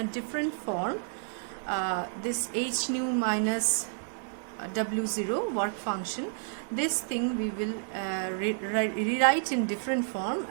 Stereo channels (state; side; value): silent; left; digital silence